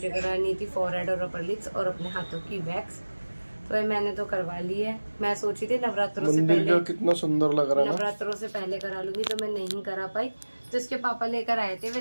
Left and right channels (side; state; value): both; inverted; correlation -1.00